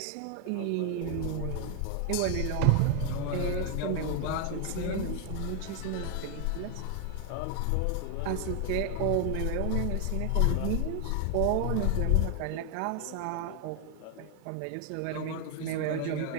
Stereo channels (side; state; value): both; different; correlation 0.00